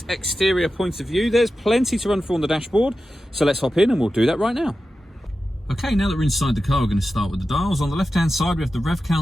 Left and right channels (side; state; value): both; normal; correlation 0.92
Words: exterior point of view. There's plenty to run through on the dashboard, so let's hop in and we'll do that right now. Okay, now that we're inside the car, we're going to start with the dials. On the left-hand side, we have the rev